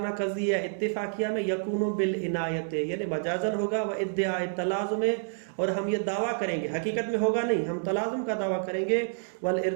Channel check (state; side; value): silent; left; digital silence